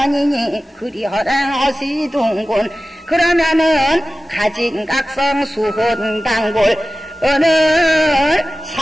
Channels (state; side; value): normal; both; correlation 0.96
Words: 그리 허랑허시둔군 그러면은 가진각성 수혼단골 오늘